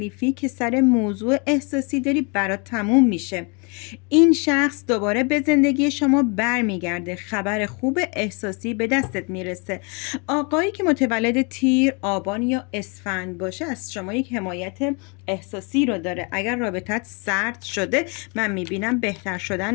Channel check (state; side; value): quieter; right; 33.0 dB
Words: که سر موضوع احساسی داری برات تموم میشه. این شخص دوباره به زندگی شما برمیگرده. خبر خوب احساسی به دستت میرسه. آقایی که متولد تیر، آبان یا اسفند باشه از شما یک حمایت احساسی رو داره. اگر رابطت سرد شده، من میبینم بهتر شدن